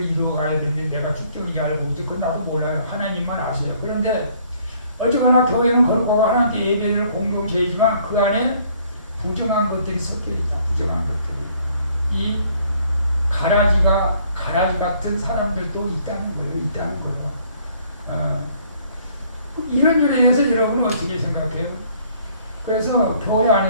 이루어가야 되는데 내가 쭉정인지 알고 있지 그건 나도 몰라요. 하나님만 아세요. 그런데 어쨌거나 교회는 거룩하고 하나님께 예배를 공동체이지만 그 안에 부정한 것들이 섞여 있다. 부정한 것들이. 이 가라지 같은 사람들도 있다는 거예요. 이런 일에 대해서 여러분은 어떻게 생각해요? 그래서 교회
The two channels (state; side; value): inverted; both; correlation -0.61